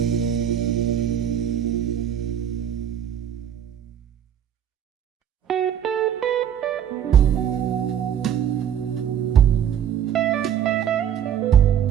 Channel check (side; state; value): left; quieter; 9.4 dB